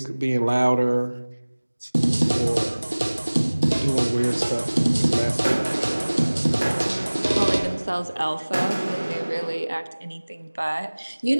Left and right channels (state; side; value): inverted; both; correlation -1.00